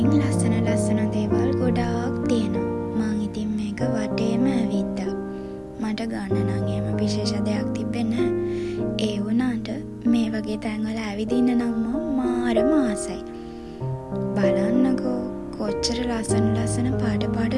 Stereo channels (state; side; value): identical; both; correlation 1.00